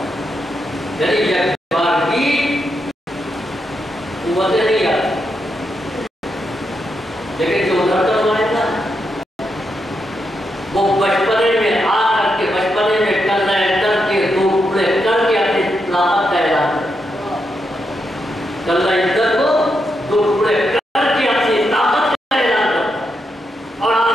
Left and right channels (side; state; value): both; normal; correlation 0.83